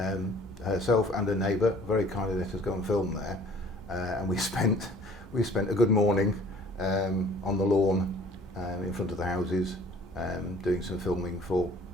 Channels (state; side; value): normal; both; correlation 0.53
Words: Herself and her neighbour very kindly let us go and film there, and we spent a good morning on the lawn in front of the houses, doing some filming for